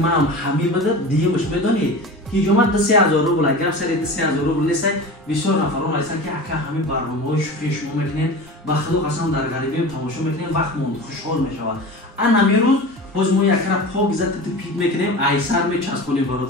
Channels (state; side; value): normal; both; correlation 0.32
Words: هم همی بده دیگه بش بدانید هیجومت 3000 روبل اگر سری 3000 روبل نیست بسیار نفران هستن که اگر همین برنامه‌های شوخی شما میکنین و خدا قسم در غریبی تماشا میکنین وقت موند خوشحال میشود ان همین روز باز ما یک را پاک زد پیک میکنیم ایسر میچسبونیم